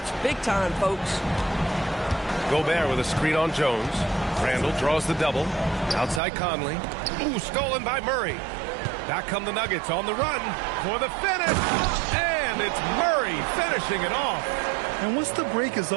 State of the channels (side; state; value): left; drops out; at 6.2 s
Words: big time, folks. Gobert with a screen on Jones. Randall draws the double. Outside Conley. Ooh, stolen by Murray. Back come the Nuggets on the run for the finish. And it's Murray finishing it off. And once the break is